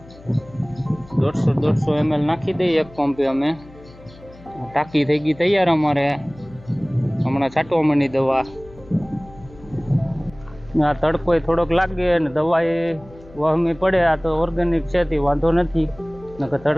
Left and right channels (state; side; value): noise; left; hum, 22 dB below the sound